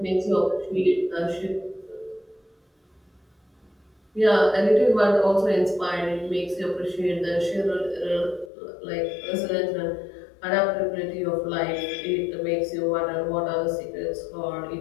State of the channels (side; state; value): right; drops out; at 8.5 s